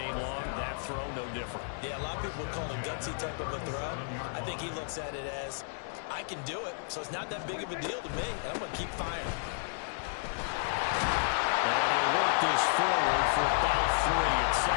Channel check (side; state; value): right; silent; digital silence